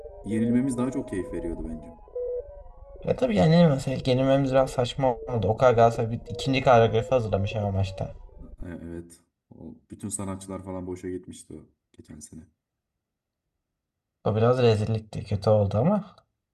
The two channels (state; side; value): identical; both; correlation 1.00